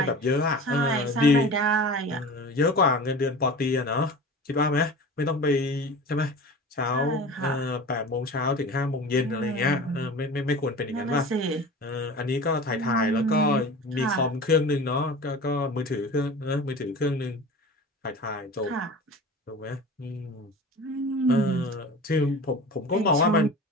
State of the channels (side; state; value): both; normal; correlation 0.36